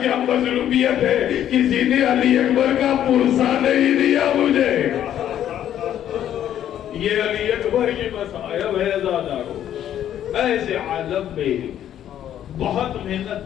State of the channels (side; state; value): right; quieter; 10.8 dB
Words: کیا مظلومیت ہے، کسی نے علی اکبر کا پرسہ نہیں دیا مجھے. یہ علی اکبر کی مصائب ہے زادارو. ایسے عالم میں بہت